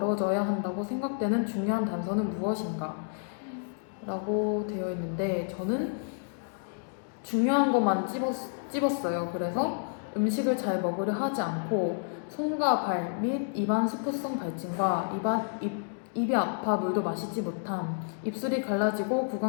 한다고 생각되는 중요한 단서는 무엇인가? 라고 되어 있는데 저는 중요한 것만 찝었어요. 그래서 음식을 잘 먹으려 하지 않고 손과 발 및 입안 수포성 발진과 입이 아파 물도 마시지 못함, 입술이 갈라지고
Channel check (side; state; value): right; silent; digital silence